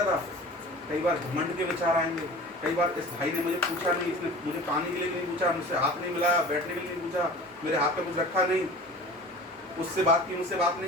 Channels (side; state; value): both; normal; correlation 0.40